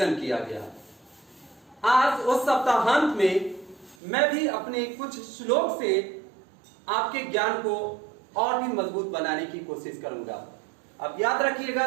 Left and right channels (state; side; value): drops out; left; at 4.0 s